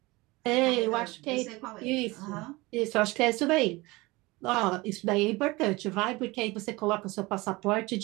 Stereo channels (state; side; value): quieter; left; 22.5 dB